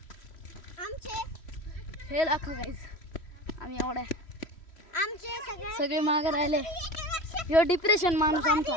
आमचे हे दाखव गाइस. आम्ही एवढ्या आमचे सगळे मागे राहिले. ह्यो डिप्रेशन माणूस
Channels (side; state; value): right; late; 3.1 ms